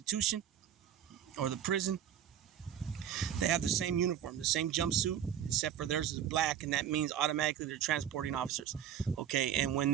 or the prison. They have the same uniform, the same jumpsuit, except for theirs is black, and that means automatically they're transporting officers. Okay, and when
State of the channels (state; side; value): quieter; left; 9.6 dB